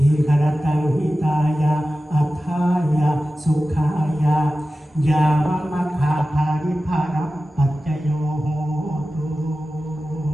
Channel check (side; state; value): both; normal; correlation 0.94